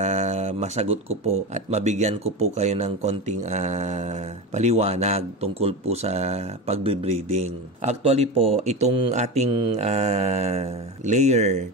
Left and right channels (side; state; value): both; normal; correlation 0.22